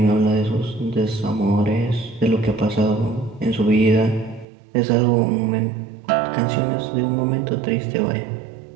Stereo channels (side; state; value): left; drops out; at 4.5 s